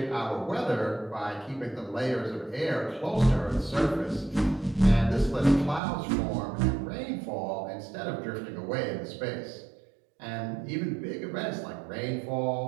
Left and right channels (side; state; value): left; drops out; at 5.8 s